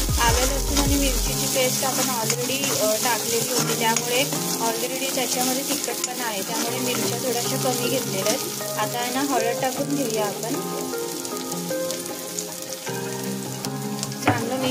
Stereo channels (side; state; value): both; identical; correlation 1.00